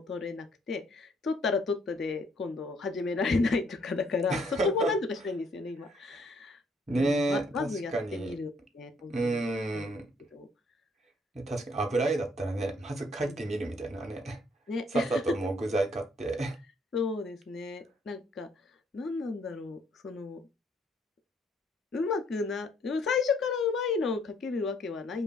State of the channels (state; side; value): normal; both; correlation 0.67